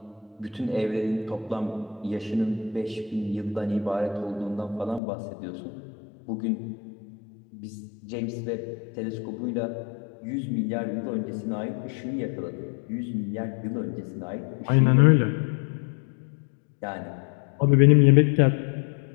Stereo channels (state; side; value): drops out; right; at 5.0 s